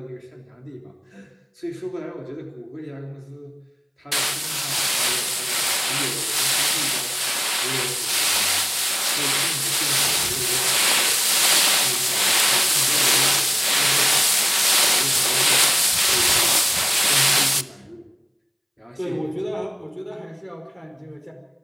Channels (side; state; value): both; identical; correlation 1.00